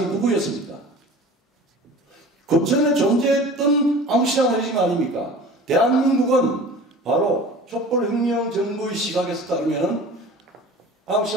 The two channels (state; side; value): normal; both; correlation 0.40